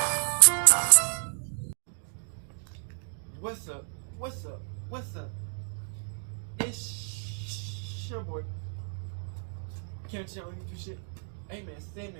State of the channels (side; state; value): left; silent; 57 dB below the other